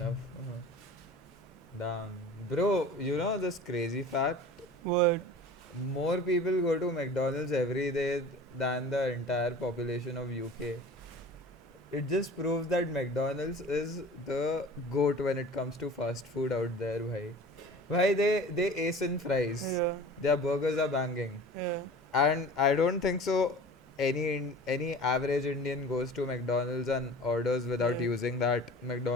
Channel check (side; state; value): both; normal; correlation 0.41